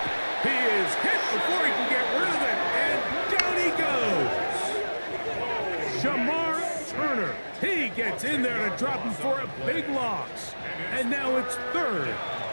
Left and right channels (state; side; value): inverted; both; correlation -1.00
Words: He is hit before he can get rid of it, and down he goes. Shamar Turner. He gets in there to drop him for a big loss. And now it's 3rd